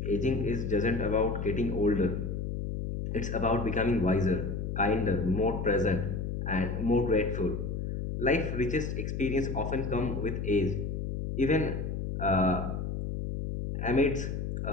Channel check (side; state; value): left; noise; hum, 3 dB below the sound